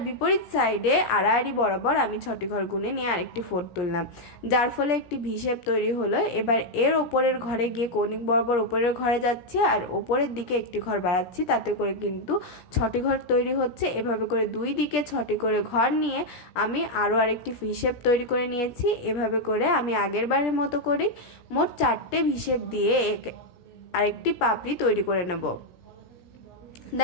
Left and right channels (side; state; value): right; late; 17 ms